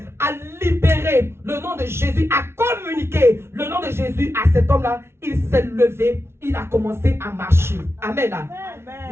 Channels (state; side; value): late; left; 0.12 ms